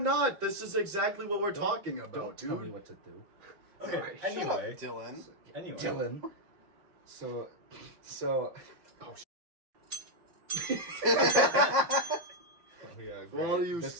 This is exactly what we're talking about, Don't dude. tell me what to do. Okay, Alright, anyway. Dylan. Anyway. Dylan. So. Oh, Oh, yeah, For all of you,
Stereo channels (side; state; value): left; late; 5.6 ms